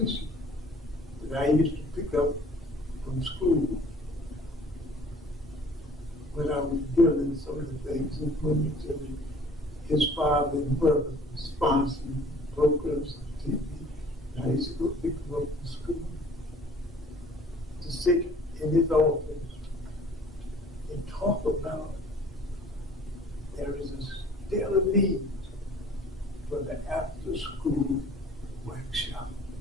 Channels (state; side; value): normal; both; correlation 0.53